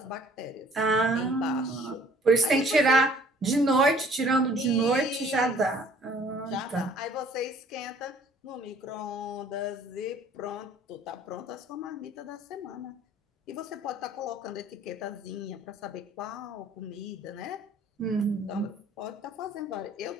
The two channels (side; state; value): both; normal; correlation 0.56